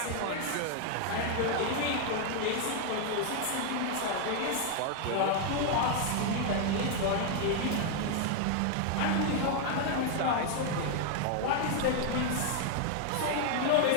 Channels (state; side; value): different; both; correlation 0.00